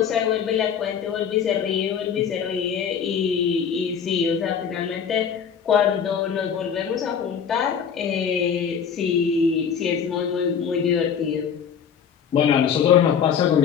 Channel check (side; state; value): right; quieter; 7.5 dB